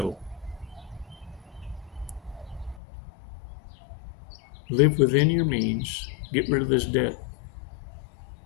Live within your means. Get rid of this debt.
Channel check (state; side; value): drops out; right; at 2.8 s